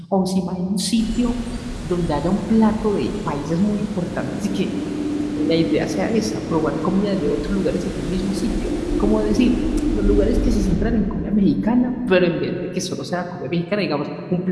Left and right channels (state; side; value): identical; both; correlation 1.00